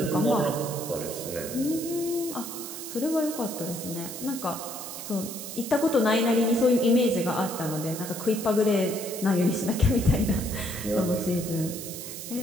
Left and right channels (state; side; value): noise; right; hiss, 9 dB below the sound